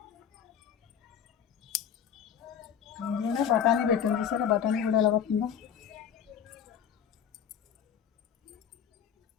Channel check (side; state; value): right; quieter; 8.4 dB